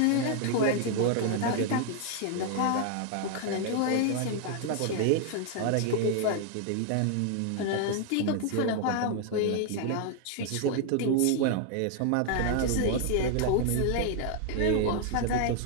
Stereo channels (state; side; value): different; both; correlation 0.00